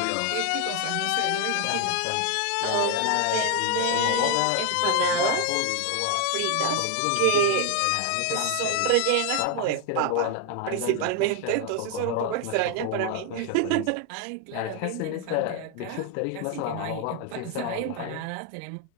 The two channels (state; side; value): different; both; correlation 0.01